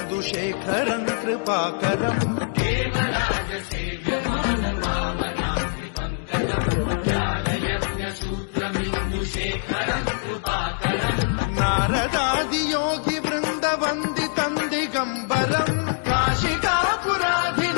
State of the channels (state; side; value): silent; right; digital silence